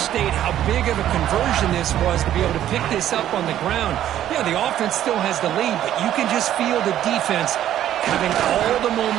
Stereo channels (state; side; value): quieter; left; 11.8 dB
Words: how big of a conversion this was to be able to pick this up on the ground. Yeah, the offense still has the lead, but you can just feel the defense having all the